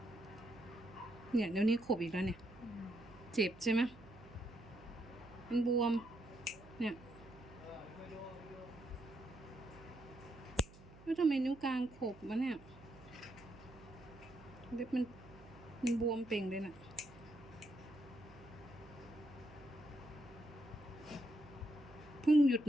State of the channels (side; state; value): right; noise; hum, 20 dB below the sound